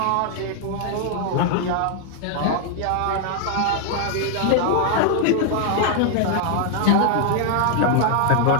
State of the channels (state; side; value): different; both; correlation 0.00